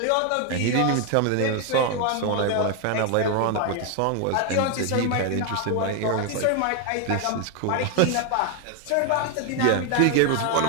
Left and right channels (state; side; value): different; both; correlation 0.01